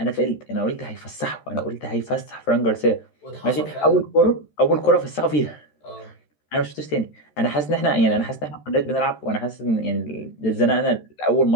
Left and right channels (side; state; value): right; late; 13 ms